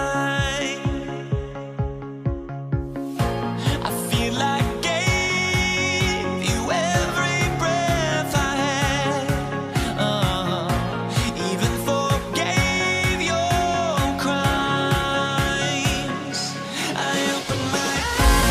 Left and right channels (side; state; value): both; identical; correlation 1.00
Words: I feel like I gave you every breath I had. Even forgave your crimes. I open my